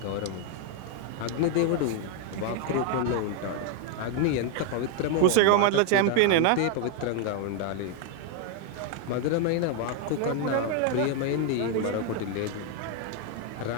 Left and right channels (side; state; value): both; different; correlation 0.01